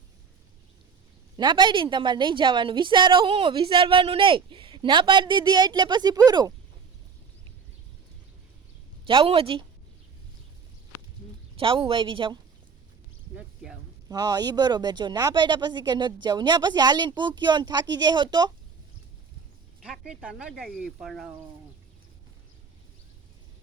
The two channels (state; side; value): quieter; left; 5.9 dB